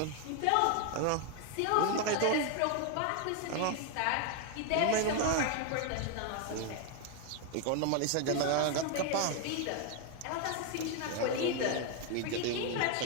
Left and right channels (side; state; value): both; different; correlation 0.01